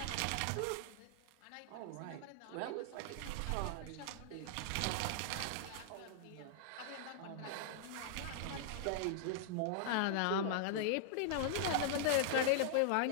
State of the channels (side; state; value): both; different; correlation -0.01